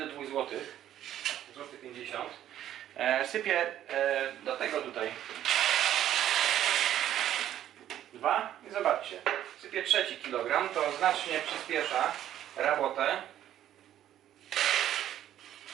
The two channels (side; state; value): left; quieter; 11.6 dB